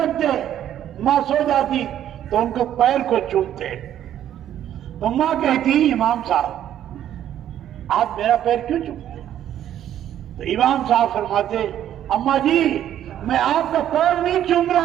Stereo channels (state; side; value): quieter; left; 11.1 dB